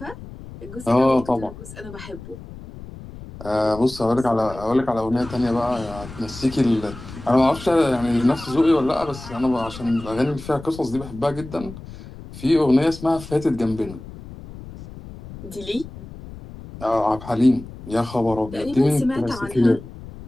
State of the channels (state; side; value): noise; left; rumble, 15 dB below the sound